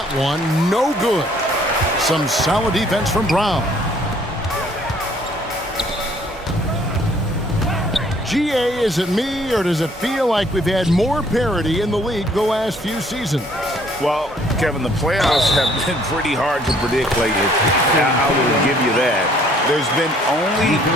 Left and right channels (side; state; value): both; normal; correlation 0.61